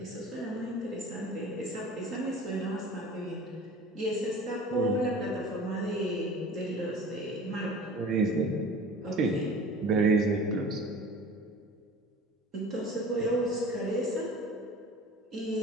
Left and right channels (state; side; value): normal; both; correlation 0.42